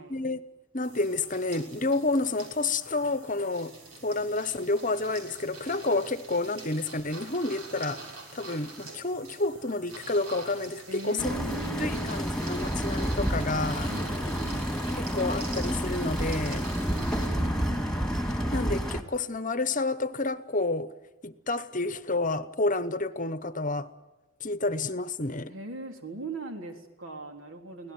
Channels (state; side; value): normal; both; correlation 0.30